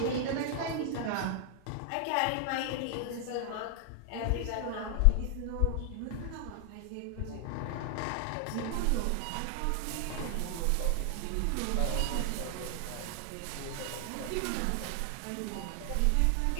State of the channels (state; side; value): different; both; correlation 0.00